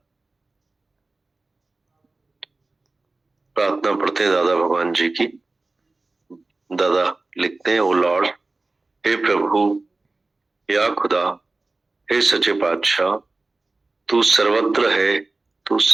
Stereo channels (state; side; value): quieter; left; 3.3 dB